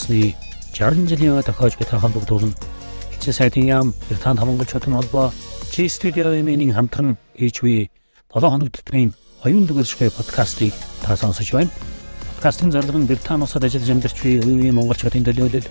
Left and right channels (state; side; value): inverted; both; correlation -1.00